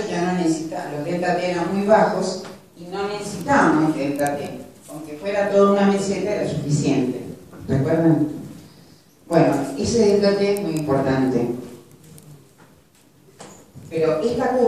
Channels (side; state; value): both; identical; correlation 1.00